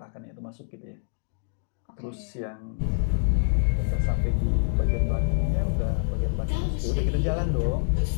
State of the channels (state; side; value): silent; right; digital silence